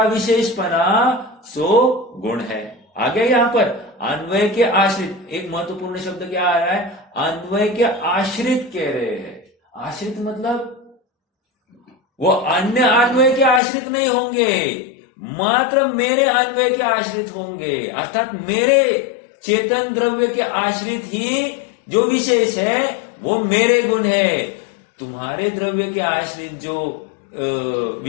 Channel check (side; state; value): right; drops out; at 13.6 s